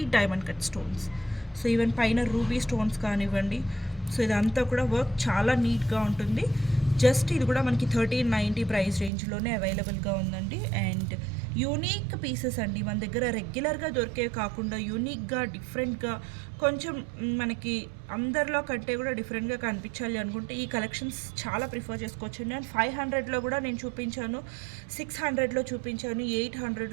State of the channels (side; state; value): left; drops out; at 9.1 s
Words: diamond cut stones. So even పైన రూబీ స్టోన్స్ కానివ్వండి, సో ఇదంతా కూడా వర్క్ చాలా నీట్గా ఉంటుంది. జస్ట్ ఇది కూడా మనకి 1390 ప్రైస్ రేంజ్లోనే అవైలబుల్గా ఉందండి. అండ్ యూనిక్ పీసెస్ అండి, మన దగ్గర రెగ్యులర్గా దొరికే కాకుండా యూనిక్గా డిఫరెంట్గా కొంచెం మనకి అందరిలో కంటే కూడా డిఫరెంట్గా కనిపించాలి అనుకుంటే ఈ కలెక్షన్స్ చాలా ప్రిఫర్ చేసుకోవచ్చు. నేను 500లో కూడా నేను చూపించాను, 600లో చూపించాను,